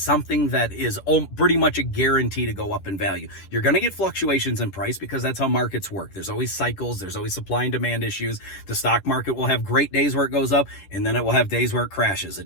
that is pretty much a guarantee to go up in value. You're going to get fluctuations in price because that's how markets work. There's always cycles. There's always supply and demand issues. The stock market will have great days where it goes up, and then it will have days where it crashes.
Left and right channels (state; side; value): late; right; 10 ms